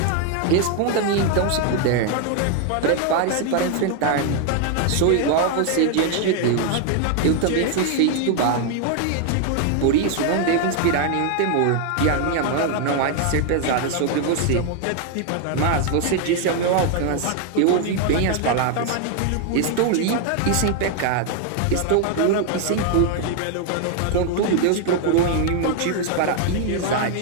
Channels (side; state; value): both; different; correlation 0.00